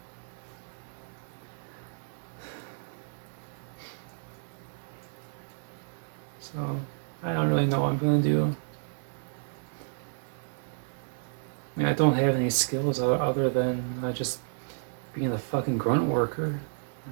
So I don't really know what I'm gonna do. I mean, I don't have any skills other than just being a fucking grunt worker.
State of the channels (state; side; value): silent; left; 57 dB below the other